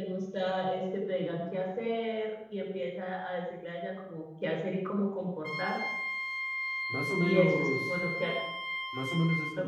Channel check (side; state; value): both; identical; correlation 1.00